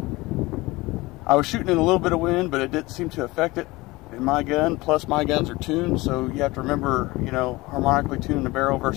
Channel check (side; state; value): right; quieter; 21.3 dB